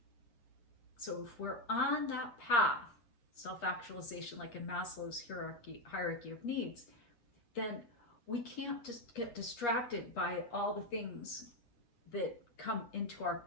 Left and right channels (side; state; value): right; late; 8.4 ms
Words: So if we're on that path, self-actualization, like in Maslow's hierarchy of needs, then we can't just get distracted by all the things that come into our